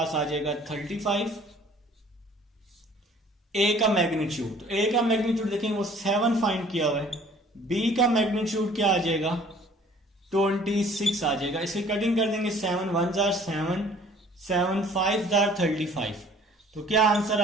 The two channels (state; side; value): normal; both; correlation 0.53